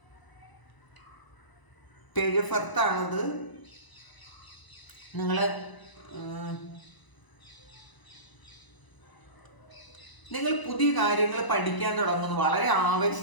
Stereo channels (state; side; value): late; right; 1.0 ms